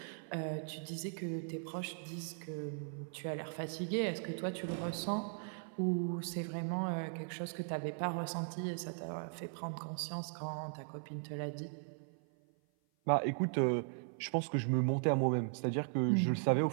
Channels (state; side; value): silent; left; 52 dB below the other